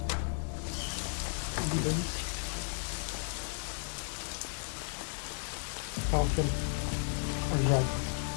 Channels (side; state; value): right; silent; 55 dB below the other